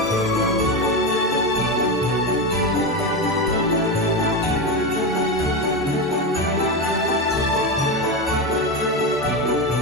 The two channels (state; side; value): normal; both; correlation 0.16